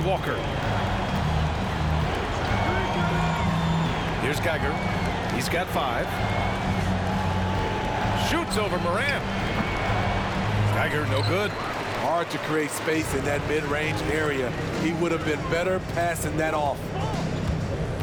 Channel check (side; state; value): both; identical; correlation 1.00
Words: Walker. Here's Geiger. He's got 5. Shoots over Morant. Geiger, no good. Hard to create space in that mid-range area. He would have been better passing that off.